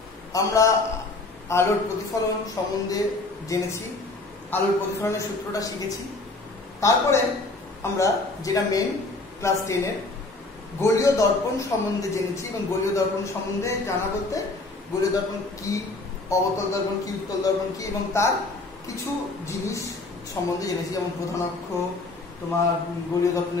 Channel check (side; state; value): right; quieter; 3.2 dB